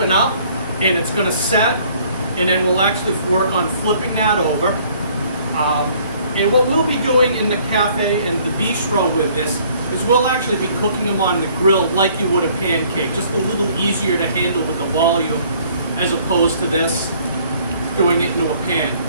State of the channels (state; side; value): inverted; both; correlation -0.59